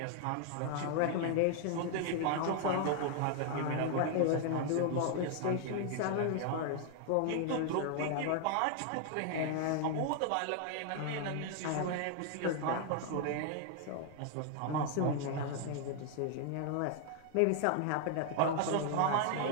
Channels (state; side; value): different; both; correlation 0.00